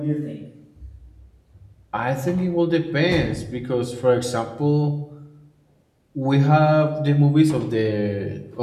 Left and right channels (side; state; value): both; identical; correlation 1.00